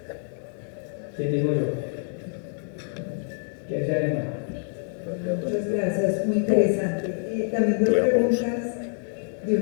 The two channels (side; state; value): right; silent; digital silence